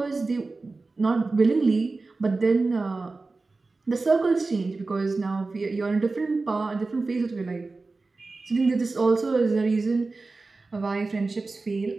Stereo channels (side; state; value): left; quieter; 3.6 dB